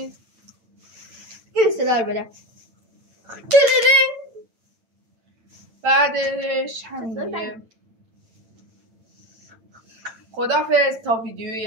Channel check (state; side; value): late; left; 9.0 ms